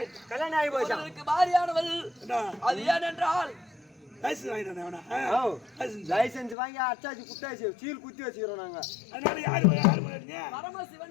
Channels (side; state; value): right; drops out; at 6.6 s